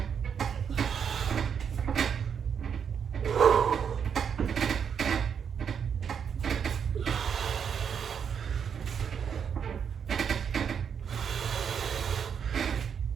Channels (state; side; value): quieter; left; 7.4 dB